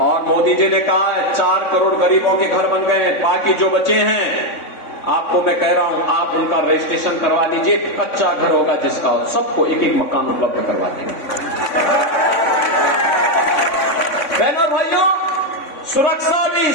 मोदी जी ने कहा 4 करोड़ गरीबों के घर बन गए, बाकी जो बचे हैं आपको मैं कह रहा हूं आप उनका रजिस्ट्रेशन करवा लीजिए, कच्चा घर होगा जिसका, सबको एक मकान उपलब्ध करवा देंगे। बहनों भाइयों, सुरक्षा भी,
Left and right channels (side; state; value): right; late; 3.5 ms